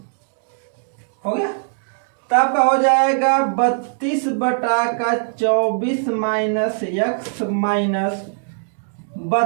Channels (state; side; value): silent; left; digital silence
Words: हो गया। तो आपका हो जाएगा 32 बटा का 24 माइनस एक्स माइनस